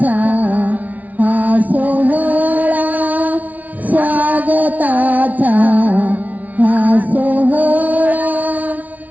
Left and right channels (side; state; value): left; late; 0.073 ms